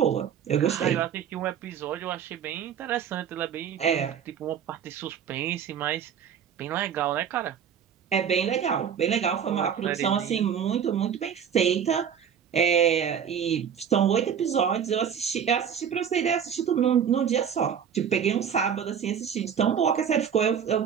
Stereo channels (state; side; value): quieter; left; 8.0 dB